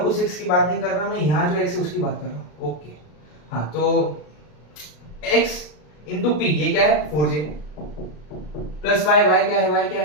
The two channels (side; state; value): right; late; 33 ms